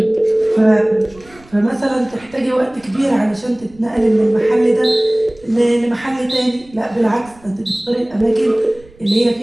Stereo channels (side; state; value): right; noise; rumble, 26 dB below the sound